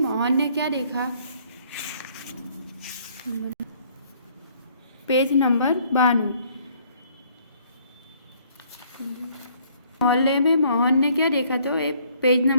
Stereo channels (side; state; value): both; inverted; correlation -0.63